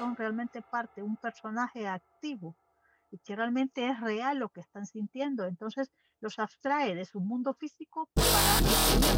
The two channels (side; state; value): both; identical; correlation 1.00